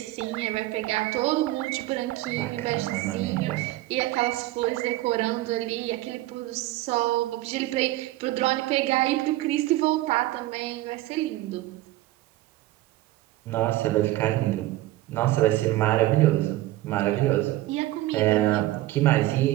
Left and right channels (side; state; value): left; quieter; 16.8 dB